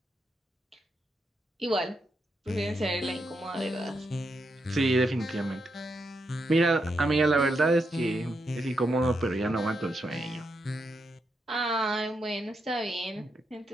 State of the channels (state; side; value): normal; both; correlation 0.82